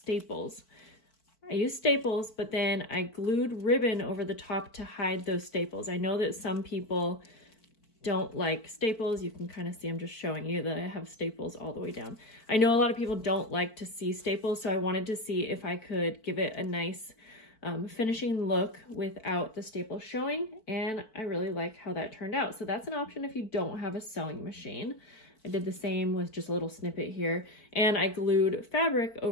But then I glued ribbon over the top to hide those staples. I know that some people don't like staples, you can kind of see I'm just showing you that I have staples all the way down. I know a lot of people don't like to see staples, so I wanted to see if I could give it a nice finishing look without the staples showing, and I really like how that turned out. So that's an option if you don't have a sewing machine. I did the same with just a little snippet here, and I glued fabric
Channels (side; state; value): right; late; 4.5 ms